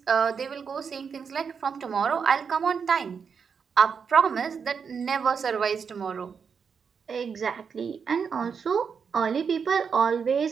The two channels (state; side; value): quieter; left; 6.3 dB